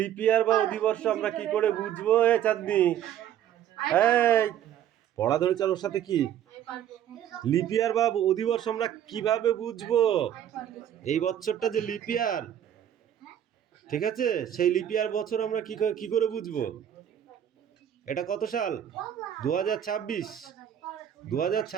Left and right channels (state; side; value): quieter; left; 10.5 dB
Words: লিপ ইয়ার বা অধিবর্ষ আমরা কি করে বুঝবো? এ চাঁদনি, এই পড়া ধরে চার ওর সাথে কি লিপ ইয়ার বা অধিবর্ষ আমরা কিভাবে বুঝবো? এই বছরটা যে লিপ ইয়ার, ঠিক আছে, সেই লিপ ইয়ার বছর আমরা কি করে বুঝবো? এটা কত সাল? 2026।